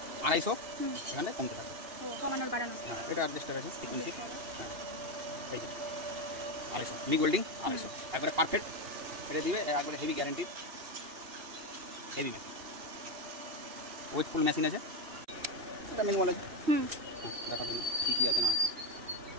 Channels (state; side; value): late; left; 2.8 ms